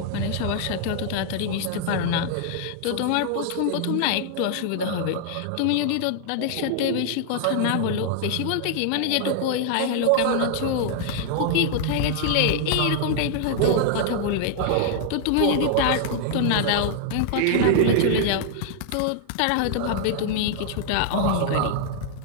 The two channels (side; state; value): both; different; correlation -0.01